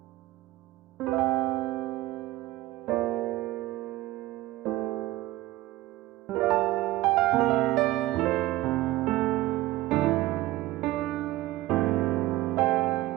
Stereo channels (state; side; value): quieter; left; 16.9 dB